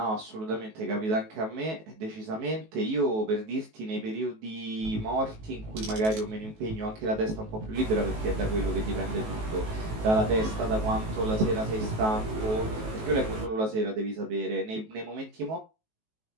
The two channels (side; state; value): left; late; 19 ms